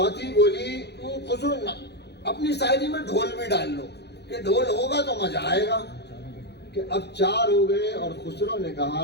بولی خسرو اپنی شاعری میں ڈھول بھی ڈال لو، کہ ڈھول ہوگا تو مزہ آئے گا. کہ اب 4 ہو گئے اور خسرو نے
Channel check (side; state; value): right; late; 0.49 ms